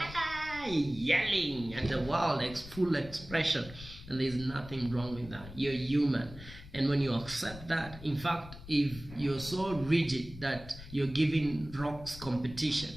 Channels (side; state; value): left; noise; rumble, 15 dB below the sound